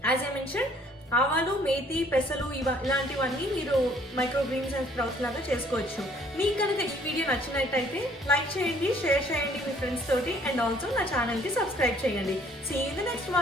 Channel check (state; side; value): normal; both; correlation 0.60